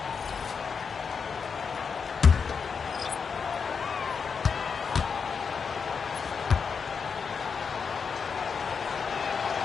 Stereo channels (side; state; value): right; quieter; 5.8 dB